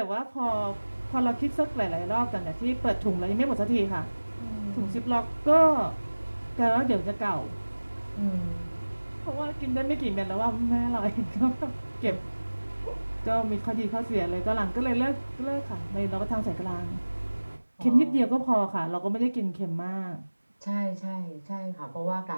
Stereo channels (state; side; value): inverted; both; correlation -1.00